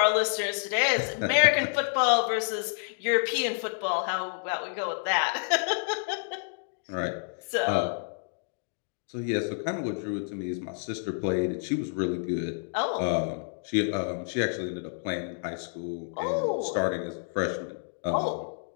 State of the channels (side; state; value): right; silent; digital silence